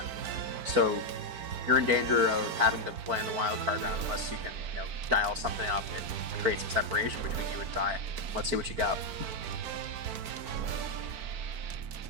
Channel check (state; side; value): late; left; 4.5 ms